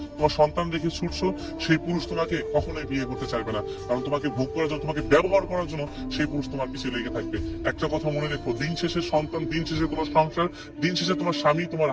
তোমার সন্তান রেখে ছুটছো, সেই পুরুষ তোমাকে কখনোই বিয়ে করতে চাইবে না। কারণ তোমাকে ভোগ করার জন্য তোমাকে ব্যবহার করার জন্য সেই পুরুষ তোমার পিছিয়ে লেগে থাকবে। একটা কথা মনে রেখো, দিন শেষে সন্তান, দিন শেষে তোমার সংসার, দিন শেষে তোমার স্বামী তোমার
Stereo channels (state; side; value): identical; both; correlation 1.00